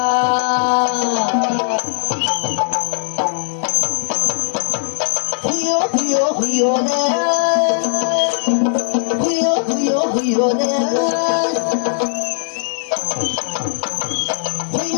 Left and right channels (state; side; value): silent; right; digital silence